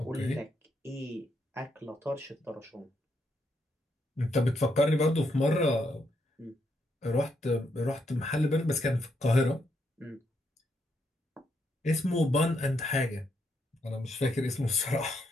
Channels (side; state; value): both; normal; correlation 0.78